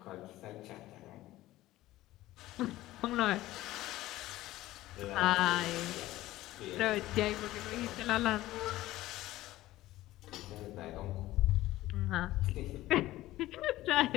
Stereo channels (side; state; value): right; quieter; 16.3 dB